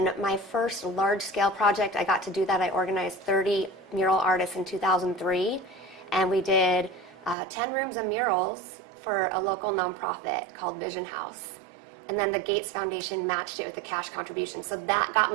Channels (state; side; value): drops out; left; at 7.4 s